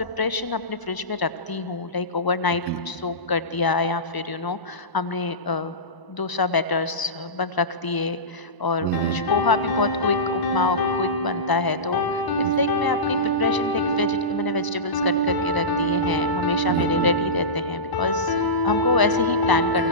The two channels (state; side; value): late; right; 1.0 ms